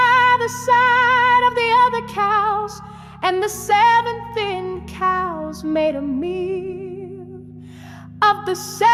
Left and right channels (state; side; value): identical; both; correlation 1.00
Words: the side of the other cows, and the 7 thin cows made a meal of the